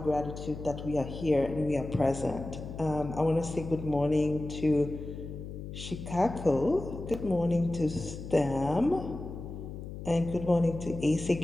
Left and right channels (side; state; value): left; noise; hum, 9 dB below the sound